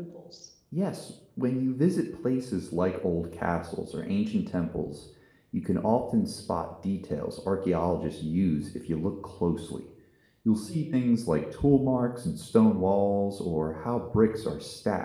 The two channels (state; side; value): identical; both; correlation 1.00